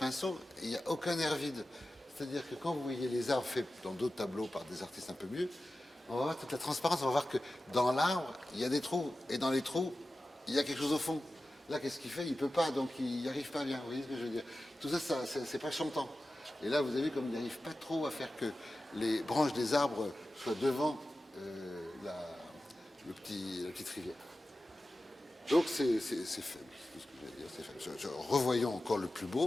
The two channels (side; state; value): both; normal; correlation 0.94